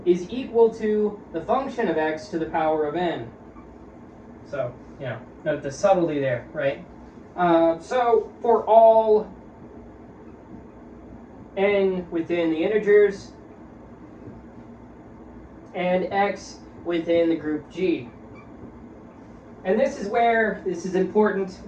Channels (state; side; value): identical; both; correlation 1.00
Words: is equal to the function of X to the power of n. So, note the subtlety there, right? So, for all n within the integers and X within the group G. And this is important,